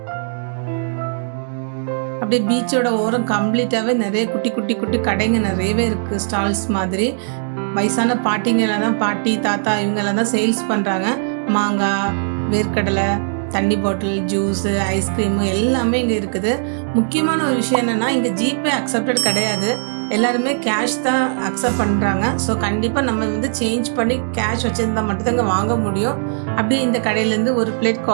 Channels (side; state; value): left; silent; digital silence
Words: அப்படியே பீச்சோட ஓரம் கம்ப்ளீட்டாகவே நிறைய குட்டி குட்டி குட்டி கடைங்க நிறையவே இருக்குது. ஸ்டால்ஸ் மாதிரி. வயசான பாட்டிங்கெல்லாம் தான், பாட்டி தாத்தா இவங்கெல்லாம் தான் சேல்ஸ் பண்ணுறாங்க. மாங்காய், வேர்க்கடலை, தண்ணி பாட்டில், ஜூஸு, ஐஸ்கிரீமு எல்லாமே இங்கே இருக்குது. முக்கியமான ஒரு விஷயம் என்னென்னா இங்கே ஜிபே அக்செப்டட் கிடையாது. எல்லாருமே கேஷ் தான் அக்செப்ட் பண்ணுறாங்க. ஸோ கண்டிப்பாக நம்ம வந்து சேஞ்ச் பண்ணி கேஷ் வச்சுருந்தா மட்டும்தான் இங்கே வாங்க முடியும். அப்படியே இந்த கடையிலேருந்து ஒரு பிளேட்